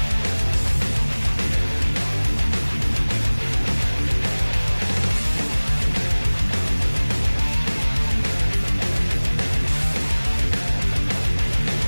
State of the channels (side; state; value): both; inverted; correlation -1.00